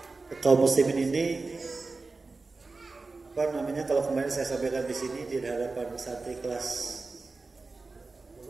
kaum muslimin ini, apa namanya, kalau kemarin saya sampaikan di sini di hadapan santri kelas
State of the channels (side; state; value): left; quieter; 3.8 dB